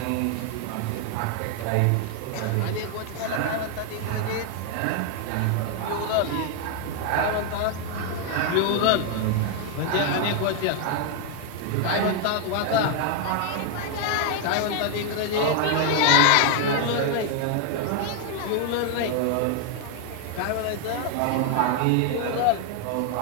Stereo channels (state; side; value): different; both; correlation 0.00